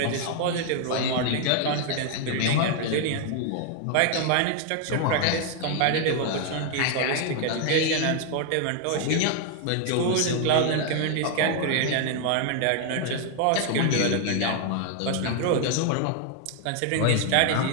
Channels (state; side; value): different; both; correlation 0.00